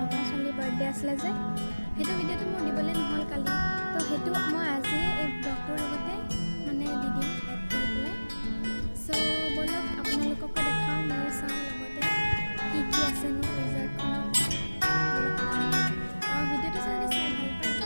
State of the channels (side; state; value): both; inverted; correlation -1.00